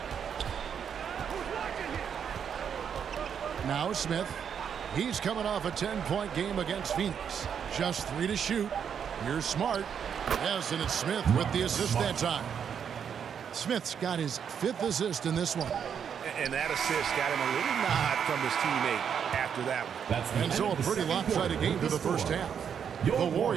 Now Smith. He's coming off a 10-point game against Phoenix. Just 3 to shoot. Here's Smart. Yes, and it's Smith with the assist that time. Smith's got his 5th assist in this one. And that assist got him a little nod from his teammate after that one. And so a pretty lopsided game to the first half. The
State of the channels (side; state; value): left; quieter; 7.7 dB